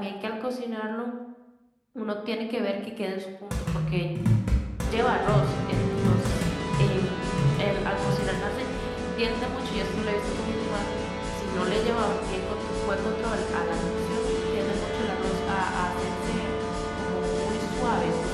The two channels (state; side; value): identical; both; correlation 1.00